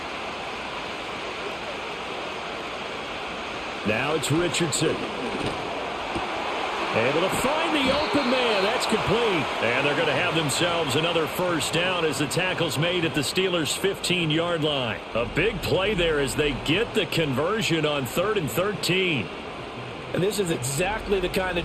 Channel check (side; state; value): both; identical; correlation 1.00